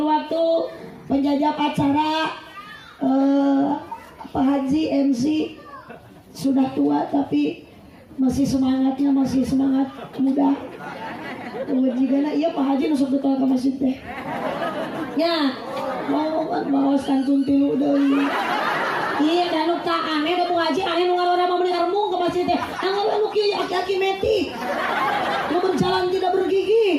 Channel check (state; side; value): identical; both; correlation 1.00